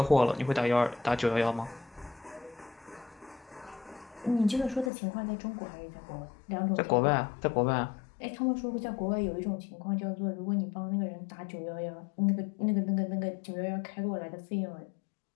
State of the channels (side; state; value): right; drops out; at 4.9 s